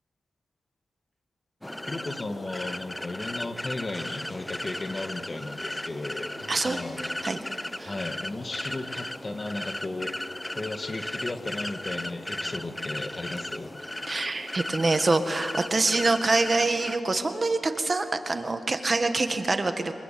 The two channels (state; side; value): normal; both; correlation 0.96